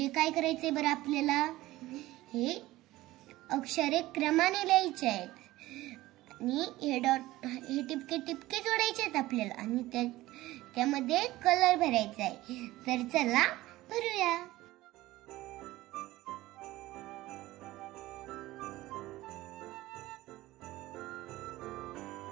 काय करायचंय बरं आपल्याला? हे अक्षरे क्रमाने लिहायचे आहेत आणि हे टिपके टिपके जोडायचे आहेत आपल्याला आणि त्यामध्ये कलर भरायचा आहे। तर चला भरूया।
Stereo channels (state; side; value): quieter; left; 17.4 dB